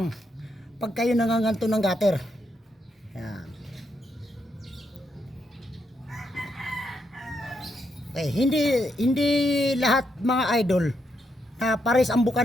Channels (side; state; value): both; normal; correlation 0.80